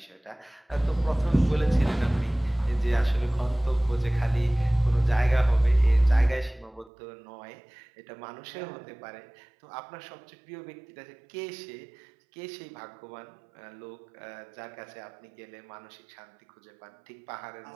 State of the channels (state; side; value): drops out; left; at 6.9 s